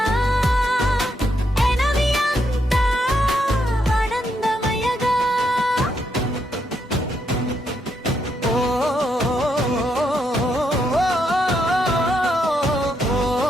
ఎనవి అంతా ఆనందమయగా.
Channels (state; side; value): normal; both; correlation 0.78